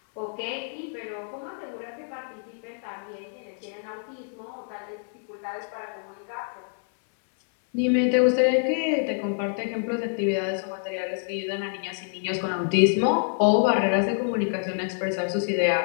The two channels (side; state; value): right; silent; 60 dB below the other